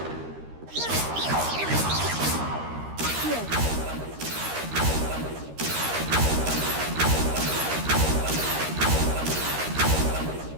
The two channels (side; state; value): left; late; 13 ms